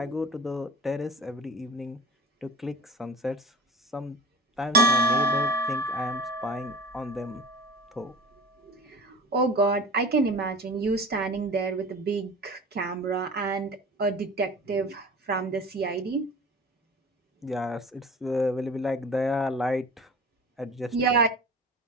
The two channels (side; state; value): both; normal; correlation 0.38